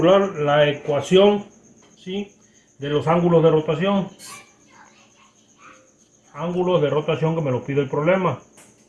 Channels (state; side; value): identical; both; correlation 1.00